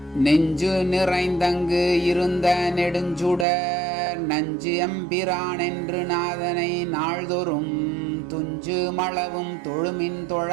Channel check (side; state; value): left; drops out; at 3.5 s